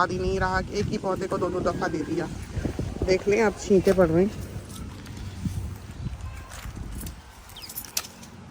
ही नहीं रहा कि एक ही पौधे को 2-2 दफ़ा दे दिया। देख लें अब छींटे पड़ रहे हैं,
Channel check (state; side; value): identical; both; correlation 1.00